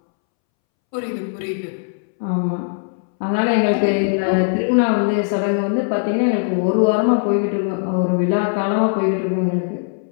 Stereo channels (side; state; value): right; silent; 65 dB below the other